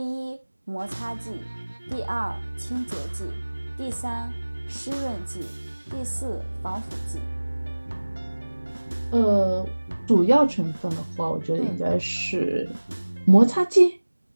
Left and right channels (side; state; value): both; inverted; correlation -1.00